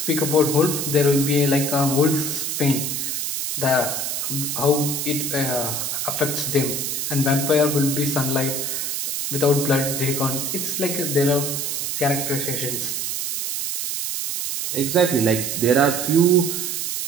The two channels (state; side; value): noise; right; hiss, 2 dB below the sound